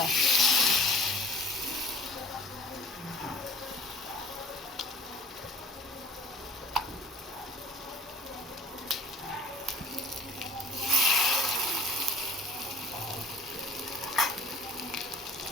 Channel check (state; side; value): normal; both; correlation 0.49